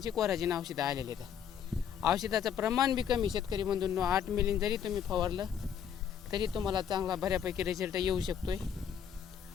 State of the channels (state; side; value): quieter; right; 8.4 dB